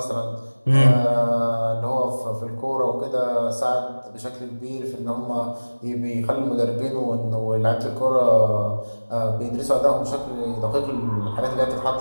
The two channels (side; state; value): both; inverted; correlation -1.00